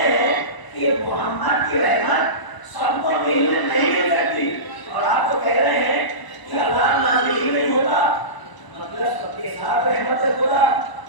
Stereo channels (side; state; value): right; late; 1.0 ms